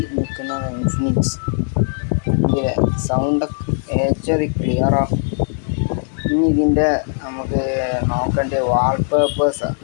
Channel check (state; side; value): silent; right; digital silence